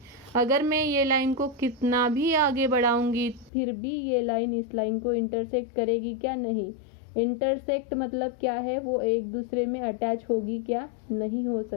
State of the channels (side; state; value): right; drops out; at 3.5 s